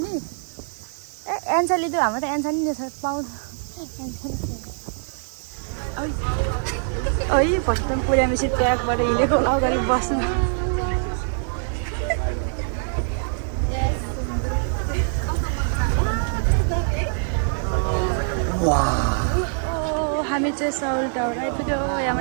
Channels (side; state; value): left; silent; 63 dB below the other